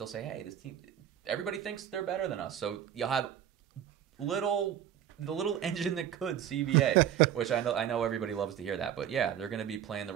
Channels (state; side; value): quieter; left; 10.2 dB